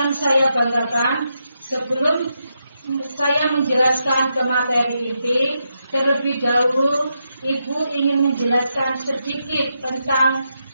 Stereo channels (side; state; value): both; inverted; correlation -0.83